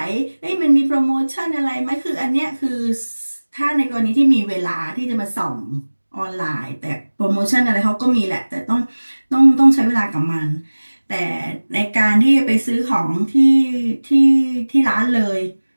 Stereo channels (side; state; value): both; inverted; correlation -1.00